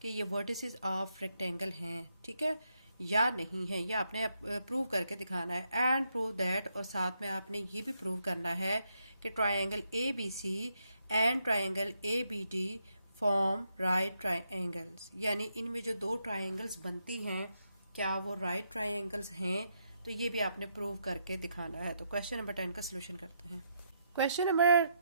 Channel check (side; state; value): both; inverted; correlation -0.79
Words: कि ये वर्टिसेस ऑफ रेक्टेंगल हैं, ठीक है, या नहीं है, या आपने प्रूव करके दिखाना है। एंड प्रूव दैट, और साथ में आपने ये भी प्रूव करना है कि triangle A B C and triangle A B D form right triangles, यानी इनमें जो दो ट्रायंगल्स बनती हैं क्या वो राइट ट्रायंगल्स हैं, तो ये भी आपने प्रूव करके दिखाना है। तो क्वेश्चन नंबर 10 का सोल्यूशन करते हैं। क्वेश्चन नंबर